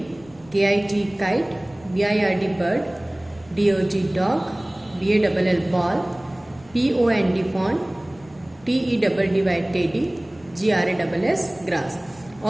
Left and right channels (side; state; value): left; noise; rumble, 26 dB below the sound